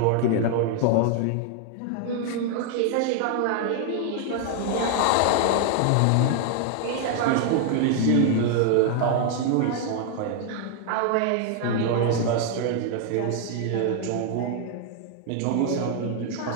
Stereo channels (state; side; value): different; both; correlation 0.00